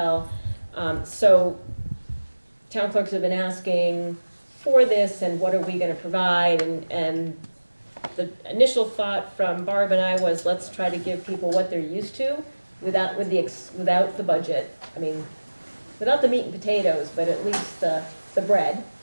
So town clerks have been asking for this, and what are we gonna provide, and the initial thought from Barb and I was, let's try to give people what they're used to, without the budget. I mean, without the meat and potatoes, but at least the bread,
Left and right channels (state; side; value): inverted; both; correlation -1.00